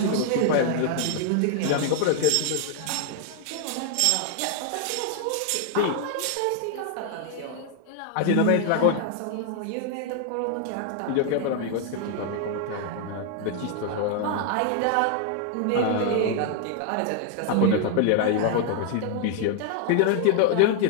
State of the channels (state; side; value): different; both; correlation 0.00